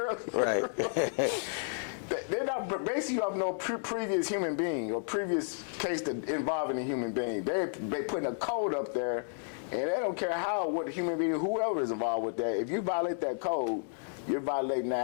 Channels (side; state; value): right; silent; digital silence